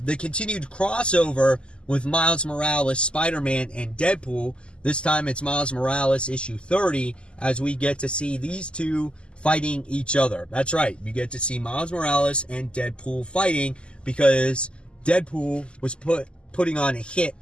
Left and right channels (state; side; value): late; right; 0.052 ms